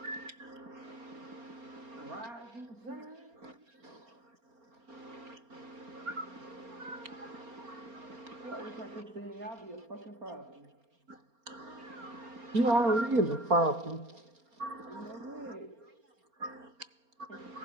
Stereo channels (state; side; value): late; left; 4.3 ms